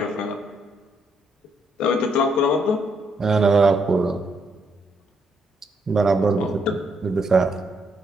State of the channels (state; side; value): normal; both; correlation 0.74